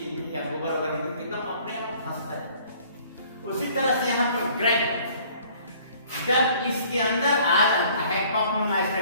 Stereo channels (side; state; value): both; inverted; correlation -0.56